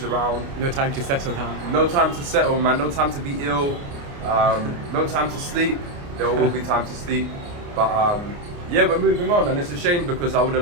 around. No time to settle down. No time to settle, man. No time to be ill. No time to sleep. There will be time to sleep. But yeah, we're moving on, and it's a shame because I would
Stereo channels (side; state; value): left; late; 29 ms